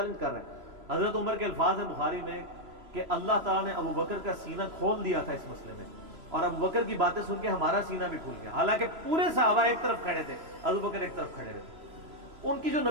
کر رہے ہیں. حضرت عمر کے الفاظ ہیں بخاری میں کہ اللہ تعالیٰ نے ابو بکر کا سینہ کھول دیا تھا اس مسئلے میں، اور ابو بکر کی باتیں سن کے ہمارا سینہ بھی کھل گیا. حالانکہ پورے صحابہ ایک طرف کھڑے تھے، ابو بکر ایک طرف کھڑے رہتے. ان کی جو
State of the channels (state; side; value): late; left; 3.0 ms